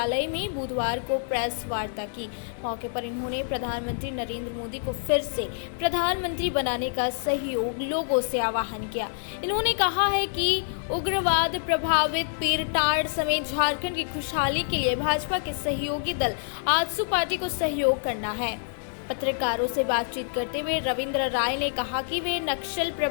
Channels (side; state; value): right; silent; 60 dB below the other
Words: में बुधवार को प्रेस वार्ता की। मौके पर इन्होंने प्रधानमंत्री नरेंद्र मोदी को फिर से प्रधानमंत्री बनाने का सहयोग लोगों से आह्वान किया। इन्होंने कहा है कि उग्रवाद प्रभावित पीरटाड़ समेत झारखंड की खुशहाली के लिए भाजपा के सहयोगी दल आजसू पार्टी को सहयोग करना है। पत्रकारों से बातचीत करते हुए रविंद्र राय ने कहा कि वे नक्सल